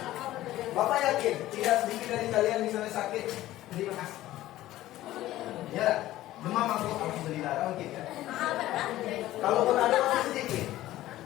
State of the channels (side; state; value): right; quieter; 15.1 dB